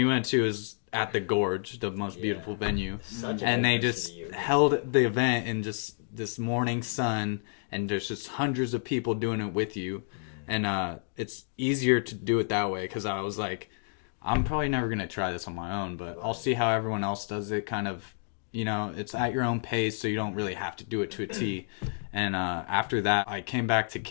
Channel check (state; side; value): silent; right; digital silence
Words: went to is at the Gorge, the most beautiful venue. And they just held the event in just this morning sun, and there's just hundreds of people doing it with you. And it's easier to do it that way, because I was like, I'm probably never going to try this on my own, but I'll see how everyone else does it. Kind of, you know, it's at your own pace, so you don't really have to do it to a T. And after that, I came back to